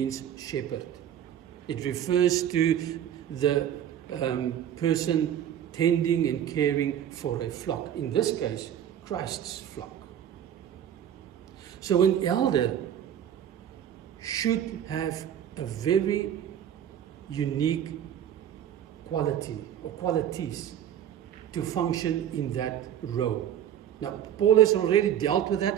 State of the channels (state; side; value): quieter; left; 10.2 dB